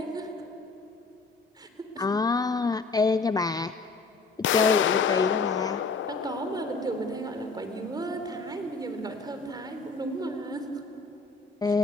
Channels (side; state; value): right; quieter; 4.0 dB